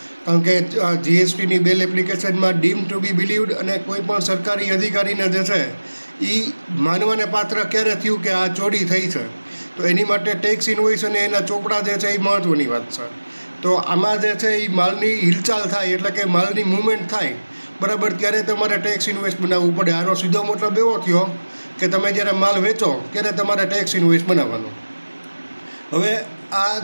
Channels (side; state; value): both; inverted; correlation -1.00